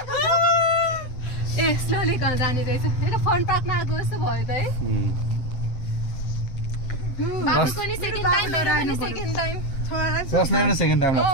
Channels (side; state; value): right; late; 7.8 ms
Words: ए स्लोली कहाँ जाने रहेछ फन पार्कमा आएको जस्तो भयो त है बाबुको नि सेकेन्ड टाइम मेरो पनि second time second time